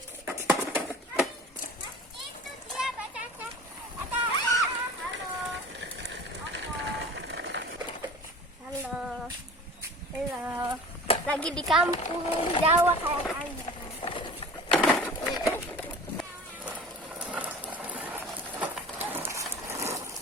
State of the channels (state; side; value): normal; both; correlation 0.41